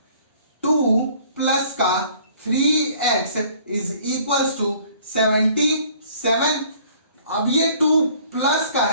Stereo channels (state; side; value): inverted; both; correlation -0.55